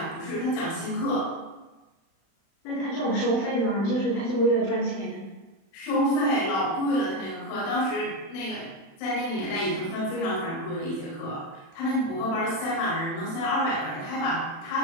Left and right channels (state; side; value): late; right; 36 ms